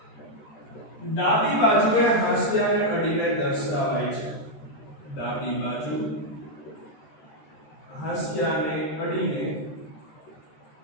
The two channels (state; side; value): late; right; 13 ms